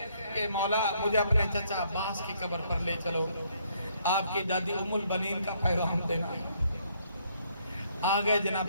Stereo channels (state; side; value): inverted; both; correlation -0.69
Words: کہ مولا مجھے اپنے چچا عباس کی قبر پر لے چلو، آپ کی دادی ام البنین کا پیغام دینا۔ آگئے